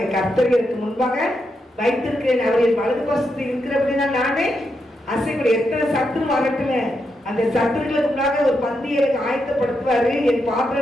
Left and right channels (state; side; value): normal; both; correlation 0.83